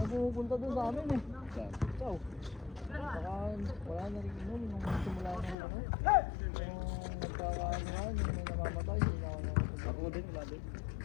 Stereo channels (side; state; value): right; drops out; at 5.6 s